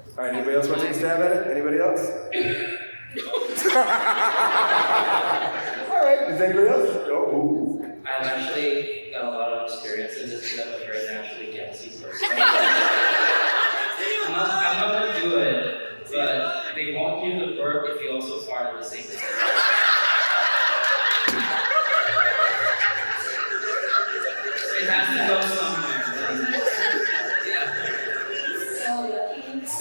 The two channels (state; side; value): inverted; both; correlation -1.00